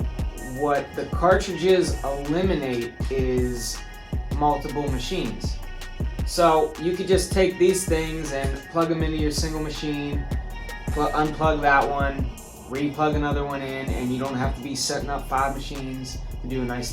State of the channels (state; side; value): identical; both; correlation 1.00